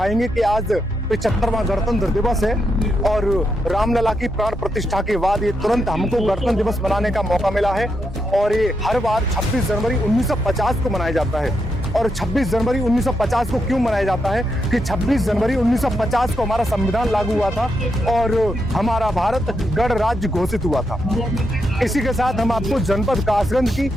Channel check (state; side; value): normal; both; correlation 0.82